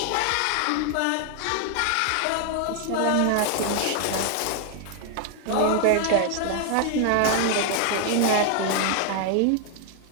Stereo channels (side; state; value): both; different; correlation 0.00